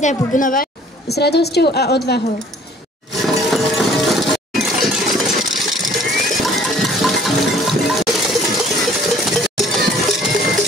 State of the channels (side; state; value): both; normal; correlation 0.54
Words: bubnovať s radosťou a odvahou.